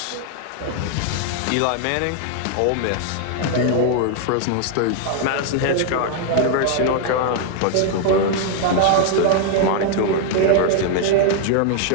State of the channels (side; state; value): both; different; correlation 0.00